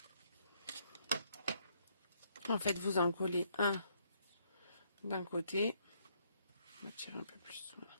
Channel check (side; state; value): both; inverted; correlation -0.71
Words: En fait, vous en collez un d'un côté. On va tirer un peu plus. Voilà.